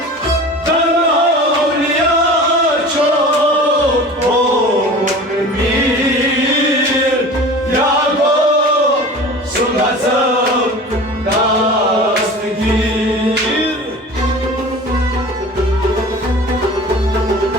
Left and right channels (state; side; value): normal; both; correlation 0.38